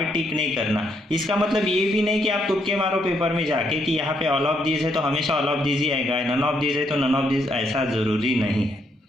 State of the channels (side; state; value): both; normal; correlation 0.74